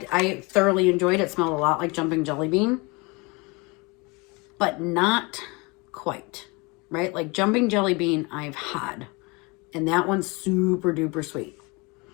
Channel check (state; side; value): quieter; right; 27.2 dB